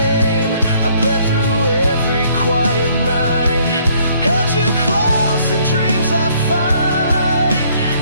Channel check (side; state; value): both; inverted; correlation -0.63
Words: I bled through every quiet night, held you close in dreams I fight.